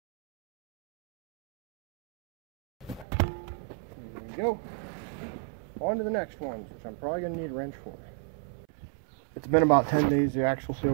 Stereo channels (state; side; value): drops out; left; at 3.1 s